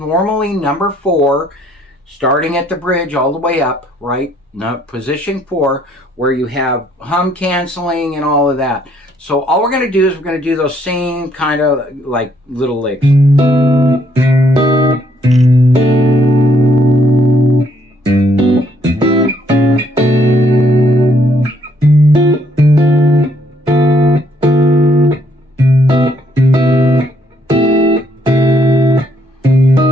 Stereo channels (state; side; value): normal; both; correlation 0.68